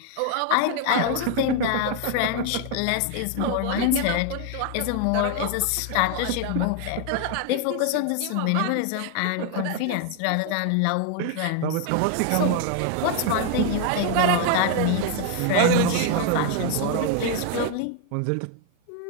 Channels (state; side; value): different; both; correlation 0.00